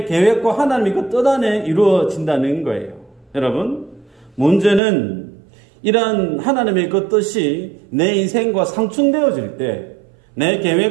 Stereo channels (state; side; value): drops out; left; at 4.8 s